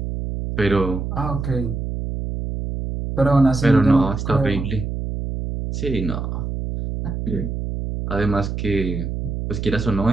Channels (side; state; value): right; noise; hum, 4 dB below the sound